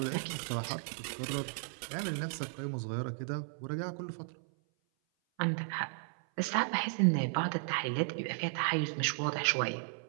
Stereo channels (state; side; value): silent; left; 55 dB below the other